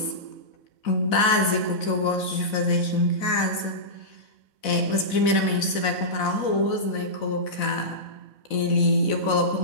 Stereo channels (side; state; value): right; late; 4.0 ms